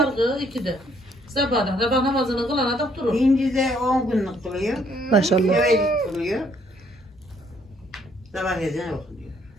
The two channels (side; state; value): both; normal; correlation 0.66